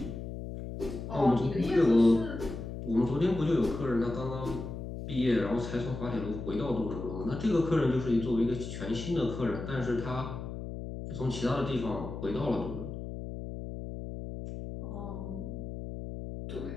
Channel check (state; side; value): noise; left; hum, 7 dB below the sound